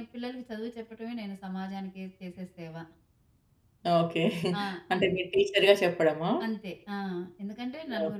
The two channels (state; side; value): identical; both; correlation 1.00